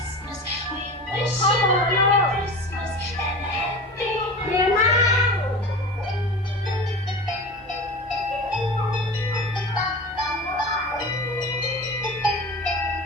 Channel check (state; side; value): normal; both; correlation 0.32